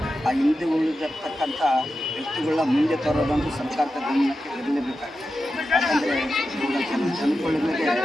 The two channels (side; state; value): both; normal; correlation 0.91